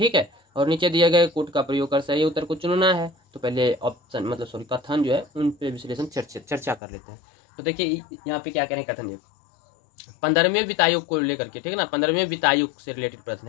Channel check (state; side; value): drops out; right; at 6.8 s